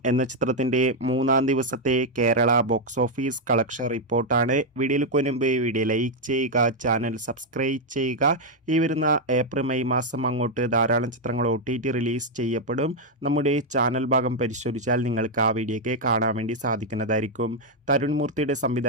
എന്ന ചിത്രത്തിന്റെ മൂന്നാം ദിവസത്തെ കേരള ബോക്സ് ഓഫീസ് കളക്ഷൻ റിപ്പോർട്ടാണ്. വീഡിയോയിൽ മുൻപ് വീഡിയോ ലൈക്ക് ചെയ്യുക, ചാനൽ സബ്സ്ക്രൈബ് ചെയ്യുക. ഈ വരുന്ന ഏപ്രിൽ മെയ് മാസം അങ്ങോട്ട് ധാരാളം ചിത്രങ്ങൾ OTT റിലീസ് ചെയ്യപ്പെടും. നമ്മുടെ ചാനൽ ഭാഗം പരിശോധിച്ചാൽ നിങ്ങൾക്ക് ആ വീഡിയോയ്ക്ക് കാണാൻ വേണ്ടി സാധിക്കുന്നതായിരിക്കും. തരുൺ മൂർത്തിയുടെ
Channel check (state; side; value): normal; both; correlation 0.00